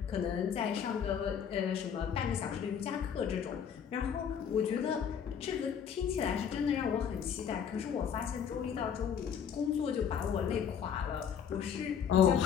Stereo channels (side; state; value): right; quieter; 7.8 dB